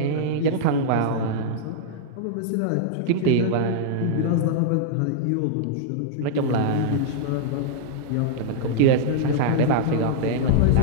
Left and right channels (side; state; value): both; different; correlation -0.01